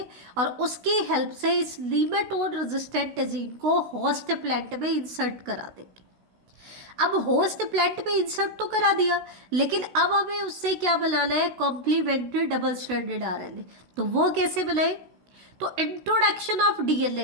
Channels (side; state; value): left; late; 16 ms